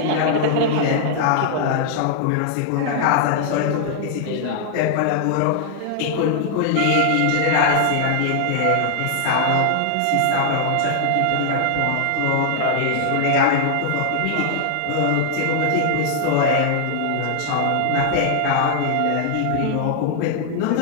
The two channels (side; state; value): both; different; correlation 0.00